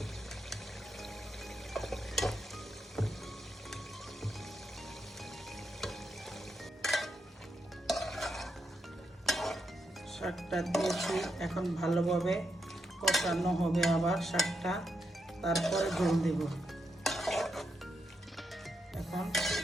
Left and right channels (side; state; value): both; normal; correlation 0.82